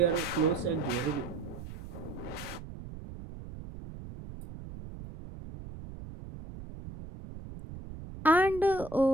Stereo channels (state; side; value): noise; right; rumble, 13 dB below the sound